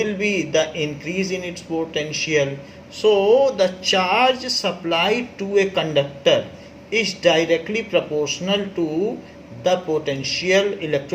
be the increase in its potential. So the charge supplied to a conductor is directly proportional to the potential,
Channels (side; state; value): both; identical; correlation 1.00